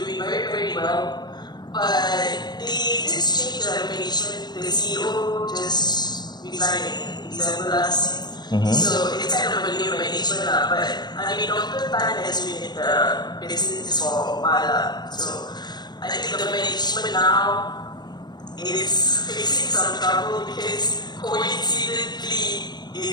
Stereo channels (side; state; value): right; late; 0.20 ms